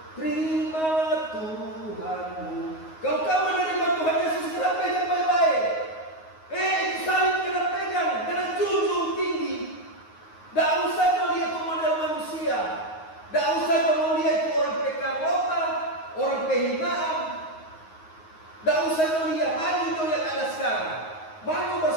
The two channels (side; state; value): right; late; 9.5 ms